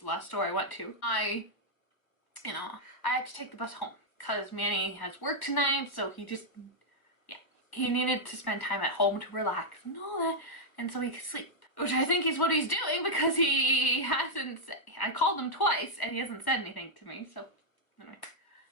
last store I went to, I had to take the bus home because Manny has work tonight, so he needed to spend time at home to relax and all that, and so he could sleep. Which I think is what he's doing, because he hasn't I called him twice and he hasn't said anything to me, so anyway.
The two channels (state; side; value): late; right; 1.1 ms